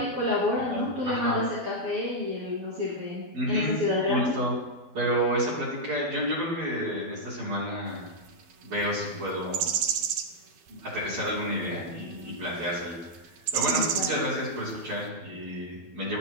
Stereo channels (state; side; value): late; left; 12 ms